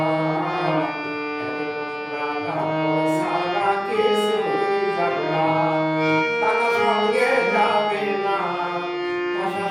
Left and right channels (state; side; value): identical; both; correlation 1.00